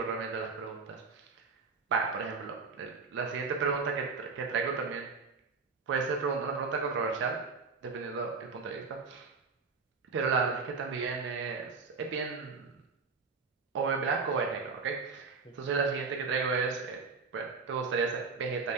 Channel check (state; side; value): quieter; left; 4.7 dB